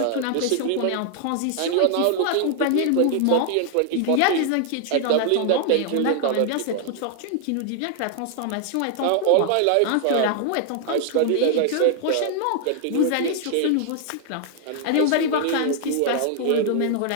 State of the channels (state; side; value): different; both; correlation 0.00